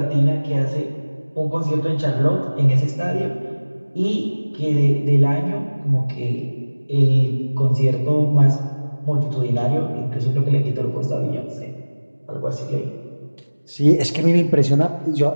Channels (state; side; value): inverted; both; correlation -1.00